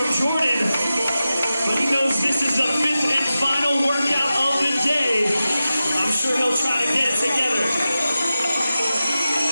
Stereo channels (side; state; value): both; inverted; correlation -0.93